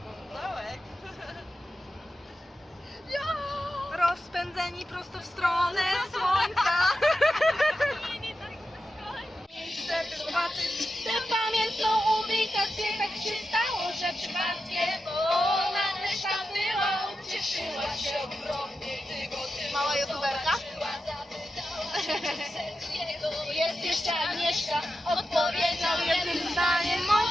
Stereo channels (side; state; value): both; normal; correlation 0.90